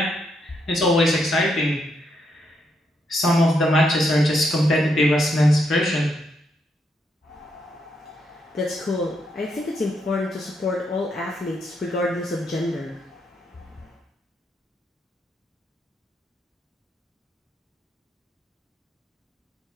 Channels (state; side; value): normal; both; correlation 0.78